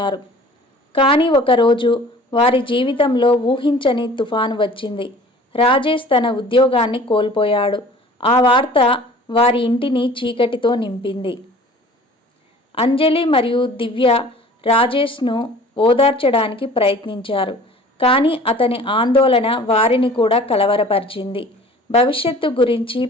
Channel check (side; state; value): both; normal; correlation 0.47